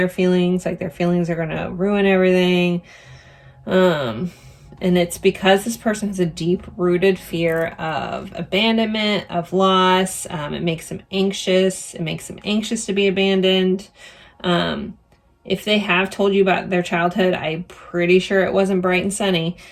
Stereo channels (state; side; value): identical; both; correlation 1.00